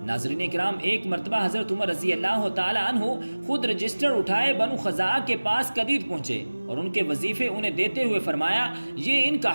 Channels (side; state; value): both; inverted; correlation -1.00